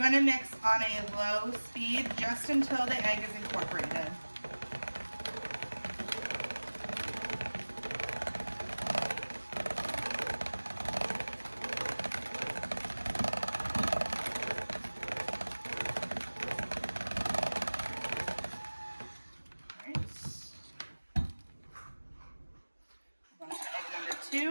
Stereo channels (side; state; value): both; inverted; correlation -1.00